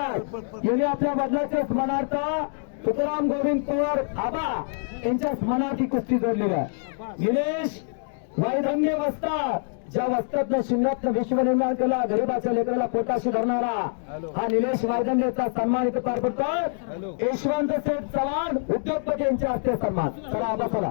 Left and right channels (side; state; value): right; silent; digital silence